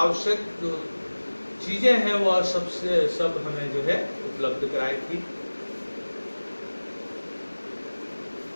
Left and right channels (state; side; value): inverted; both; correlation -1.00